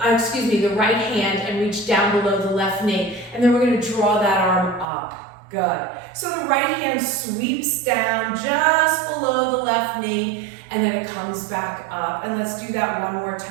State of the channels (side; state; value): left; drops out; at 4.9 s